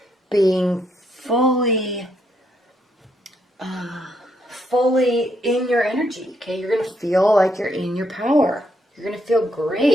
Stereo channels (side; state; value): both; normal; correlation 0.75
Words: being fully in your energy. Okay, you're going to feel like you're in your power. You're going to feel